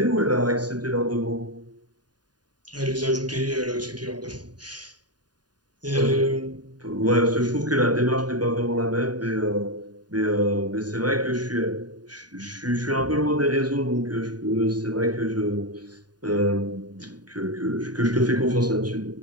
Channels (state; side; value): late; left; 0.70 ms